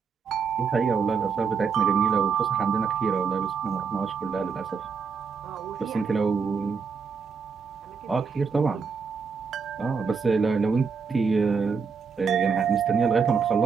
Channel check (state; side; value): quieter; left; 5.7 dB